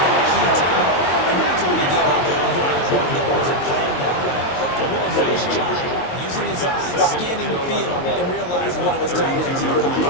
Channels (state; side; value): late; right; 22 ms